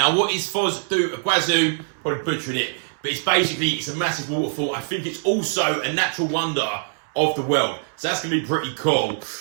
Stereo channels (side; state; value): left; silent; 63 dB below the other